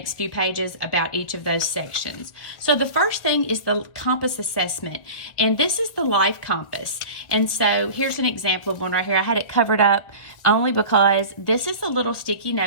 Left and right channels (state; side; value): late; right; 1.3 ms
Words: few pages about each of those sections. So the first thing is the compass assessment, and this is the life compass. And so here's an example of one right here. I had it covered up only because this is a little sticky